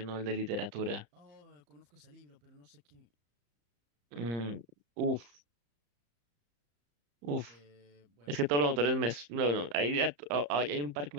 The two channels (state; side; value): late; left; 34 ms